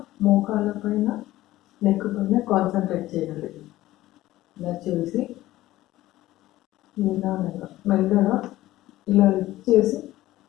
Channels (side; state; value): right; quieter; 16.0 dB